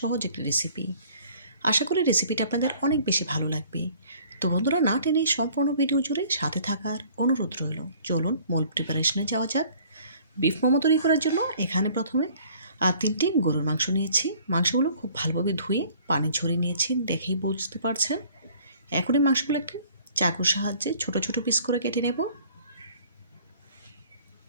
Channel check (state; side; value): inverted; both; correlation -0.54